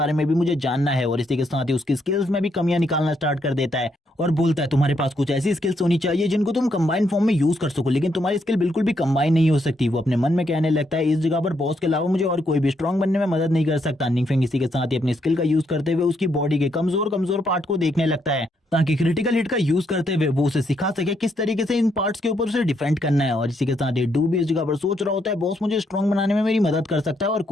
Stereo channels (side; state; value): both; normal; correlation 0.76